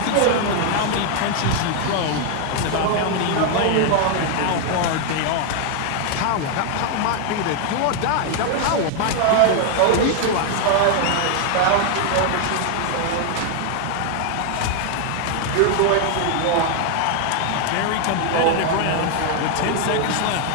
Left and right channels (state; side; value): different; both; correlation 0.00